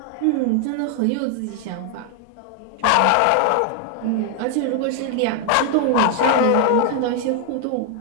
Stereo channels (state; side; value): different; both; correlation 0.00